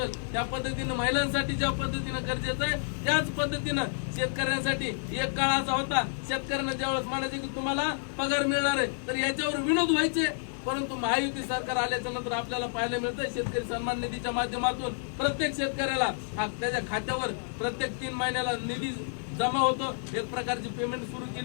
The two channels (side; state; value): right; silent; digital silence